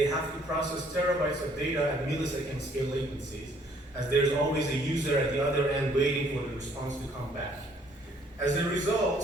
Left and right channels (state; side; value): normal; both; correlation 0.63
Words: have to process terabytes of data at millisecond scale latencies, as there's always a user at the other end waiting for the response to come back. As a